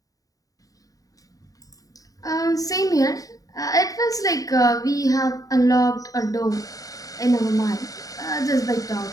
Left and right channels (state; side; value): late; right; 0.17 ms